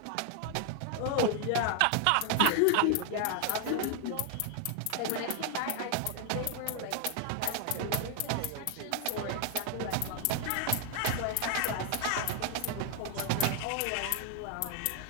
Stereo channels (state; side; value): different; both; correlation 0.00